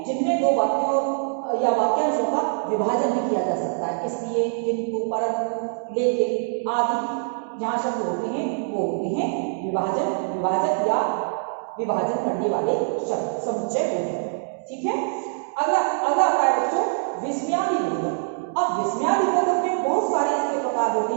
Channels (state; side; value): silent; left; digital silence